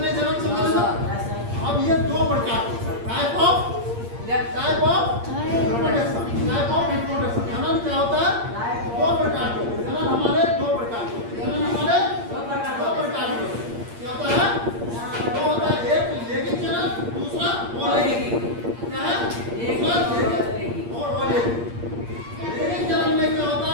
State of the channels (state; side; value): late; left; 8.6 ms